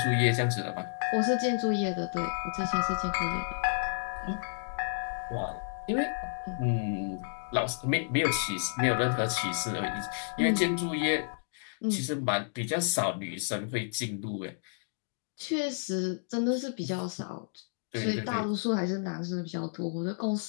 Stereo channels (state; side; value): silent; right; digital silence